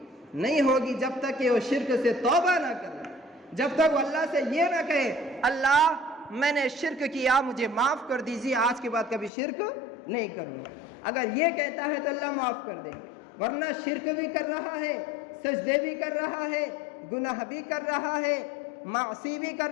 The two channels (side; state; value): right; drops out; at 9.3 s